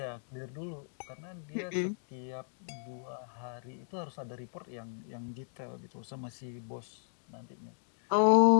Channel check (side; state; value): right; silent; digital silence